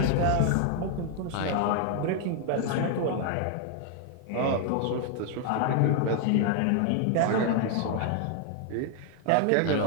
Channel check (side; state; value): both; different; correlation 0.00